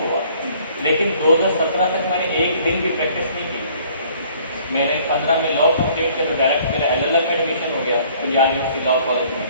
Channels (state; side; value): inverted; both; correlation -0.57